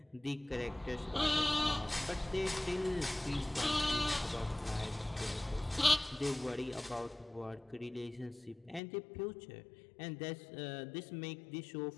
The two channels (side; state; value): right; drops out; at 8.8 s